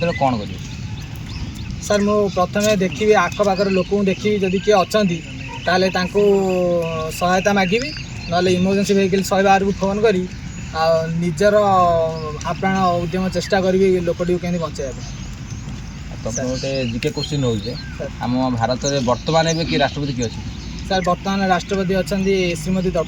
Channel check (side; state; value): both; identical; correlation 1.00